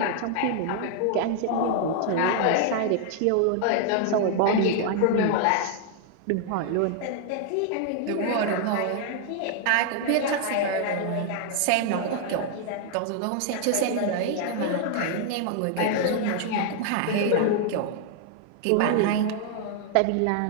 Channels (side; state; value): both; different; correlation 0.00